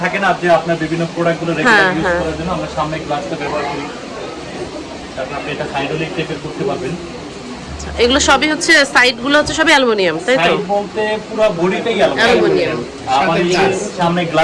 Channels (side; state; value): both; identical; correlation 1.00